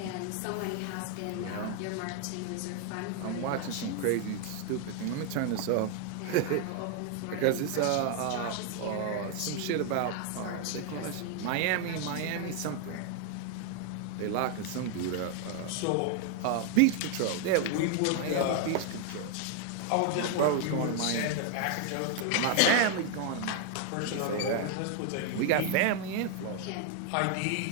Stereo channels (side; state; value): both; different; correlation 0.00